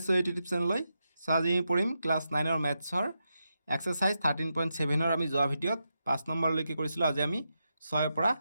এই ইউটিউব চেনেললৈ। আজি আমি পঢ়িম ক্লাছ 9ৰ মেথছৰ এক্সাৰচাইজ 13.7ৰ আমি যোৱা ভিডিঅ'ত 5 নম্বৰলৈকে কৰিছিলোঁ। আজি আমি 6ৰ পৰা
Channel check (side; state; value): both; inverted; correlation -0.86